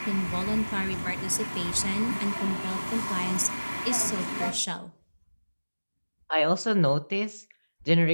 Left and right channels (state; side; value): inverted; both; correlation -1.00